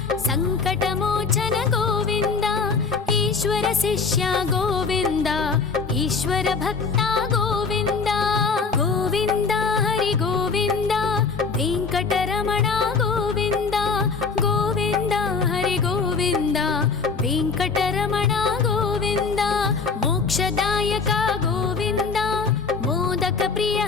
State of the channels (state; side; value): quieter; right; 4.9 dB